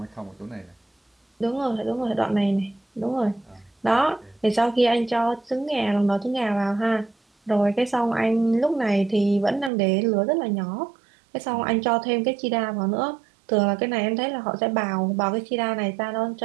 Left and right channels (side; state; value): left; drops out; at 9.7 s